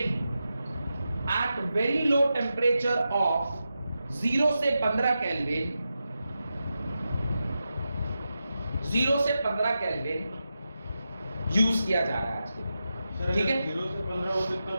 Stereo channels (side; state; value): both; inverted; correlation -0.89